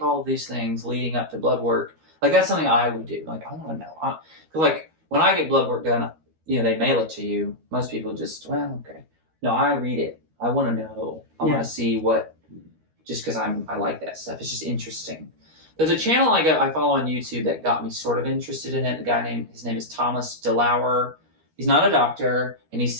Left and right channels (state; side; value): late; left; 13 ms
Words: all of these things leading up to blood work? Like that's something I would do. Like I want to know, because like when I get blood work done, they mail it to you. Most people just, well, okay. No, I read it. I want to know. I want to see what. Just because I like that stuff. It's just interesting. There's a channel I follow on YouTube that got me sort of interested in it. His name is Thomas DeLauer. He's not a doctor, and he